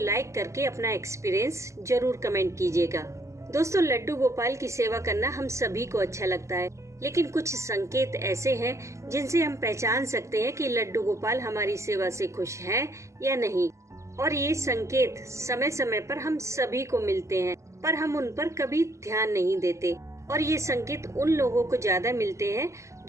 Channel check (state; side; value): late; left; 0.14 ms